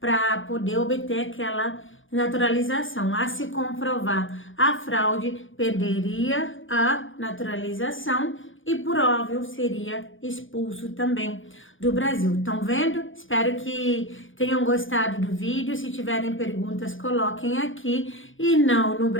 poder obter aquela naturalização. A se comprovar a fraude, perderia a naturalização e, por óbvio, seria expulso também do Brasil. Estão vendo? Espero que tenham gostado do vídeo. Se tiverem perguntas, coloquem aqui. E não, no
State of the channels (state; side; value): late; right; 0.57 ms